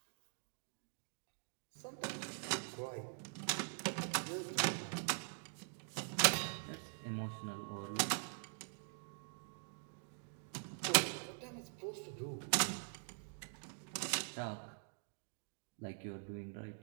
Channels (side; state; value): left; silent; digital silence